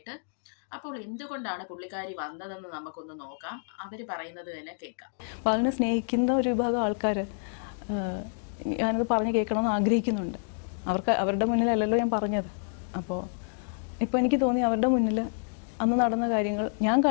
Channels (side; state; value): right; silent; digital silence